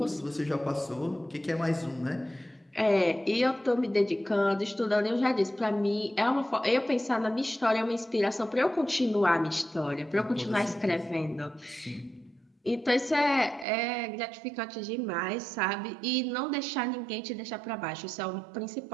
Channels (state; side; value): drops out; left; at 13.7 s